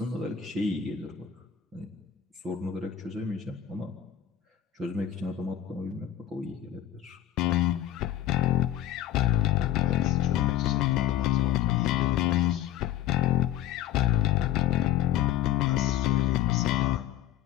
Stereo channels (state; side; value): quieter; right; 11.5 dB